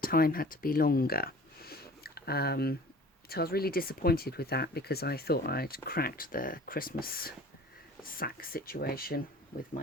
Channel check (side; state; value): both; normal; correlation 0.45